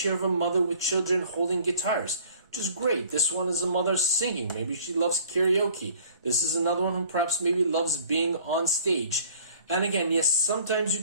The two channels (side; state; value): both; inverted; correlation -0.52